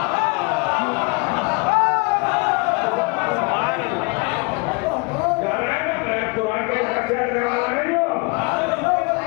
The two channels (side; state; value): right; quieter; 31.3 dB